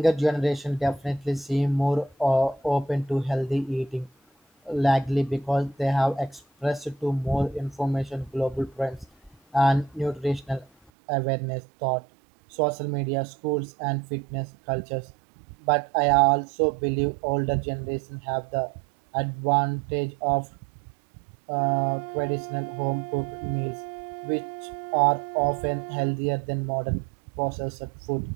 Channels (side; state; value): left; drops out; at 10.9 s